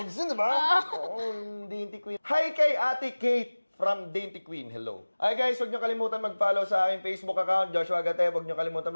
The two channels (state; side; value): inverted; both; correlation -1.00